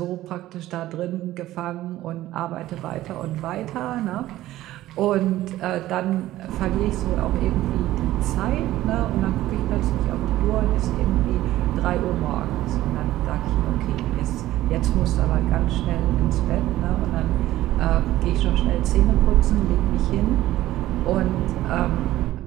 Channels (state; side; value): quieter; left; 15.1 dB